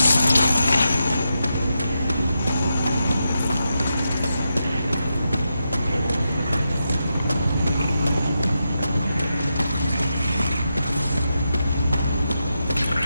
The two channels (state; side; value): inverted; both; correlation -0.86